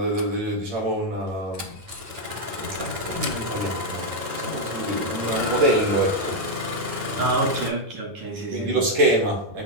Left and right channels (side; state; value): left; late; 9.1 ms